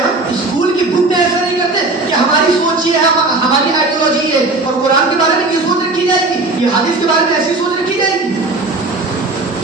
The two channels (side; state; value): left; quieter; 3.2 dB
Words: اسکول کی بک میں ایسا نہیں کرتے کہ ہماری سوچ یہ ہے، ہماری آئیڈیالوجی ہے، اور قرآن کے بارے میں یہ سوچ رکھی جائے گی، یہ حدیث کے بارے میں ایسی سوچ رکھی جائے گی.